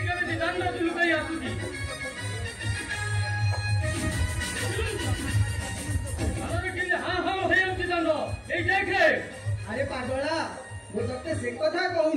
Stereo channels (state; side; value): identical; both; correlation 1.00